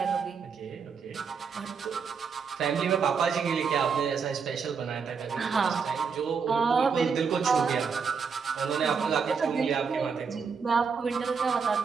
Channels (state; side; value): quieter; left; 5.8 dB